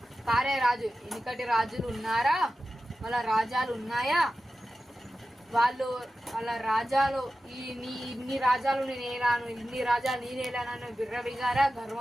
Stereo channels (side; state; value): both; normal; correlation 0.94